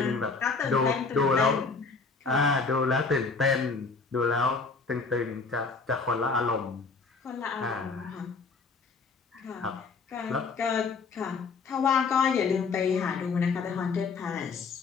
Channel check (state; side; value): quieter; right; 4.6 dB